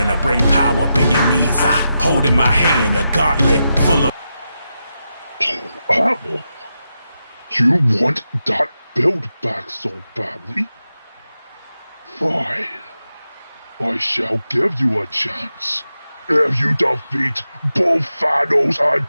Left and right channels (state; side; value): inverted; both; correlation -0.88